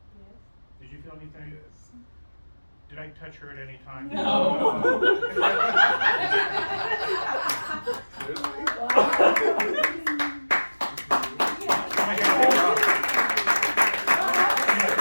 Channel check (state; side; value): inverted; both; correlation -1.00